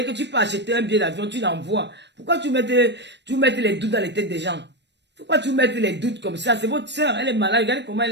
que tu peux acheter un billet d'avion, tu l'envoies. Pourquoi tu mets les doutes dans les têtes des gens? Pourquoi tu mets les doutes comme ça? C'est votre soeur, elle est malade. Regardez comment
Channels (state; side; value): late; left; 0.50 ms